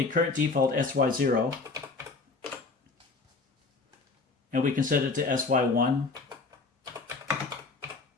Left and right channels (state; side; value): quieter; right; 4.0 dB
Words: current default SY0, and we can set it to SY1,